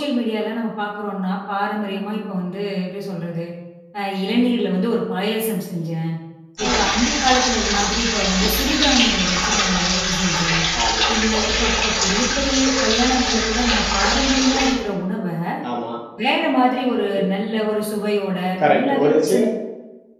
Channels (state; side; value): identical; both; correlation 1.00